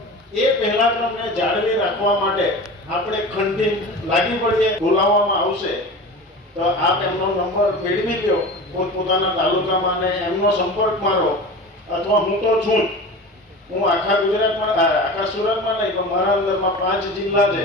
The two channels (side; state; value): both; normal; correlation 0.33